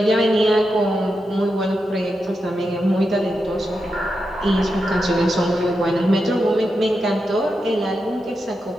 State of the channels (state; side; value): normal; both; correlation 0.87